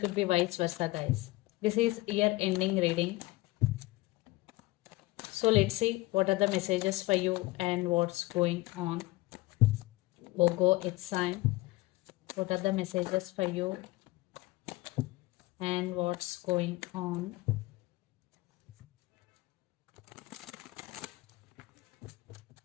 be vice versa, guys. This is year ending reading. So let's see what are the messages for you and what's going on. Virgo, it's time. What are the messages for you and what's going on?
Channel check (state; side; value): quieter; right; 20.2 dB